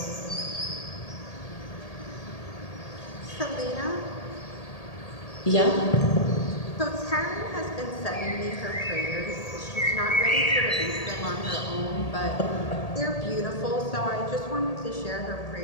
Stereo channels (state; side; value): late; right; 1.8 ms